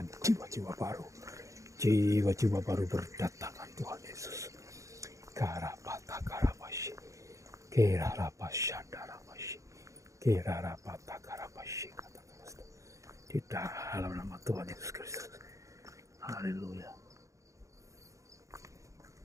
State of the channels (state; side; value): late; left; 0.15 ms